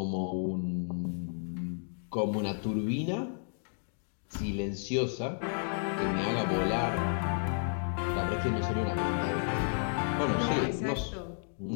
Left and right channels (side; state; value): right; silent; digital silence